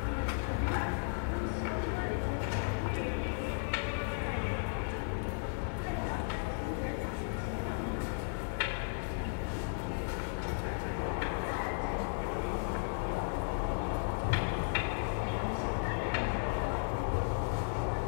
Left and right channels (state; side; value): silent; right; digital silence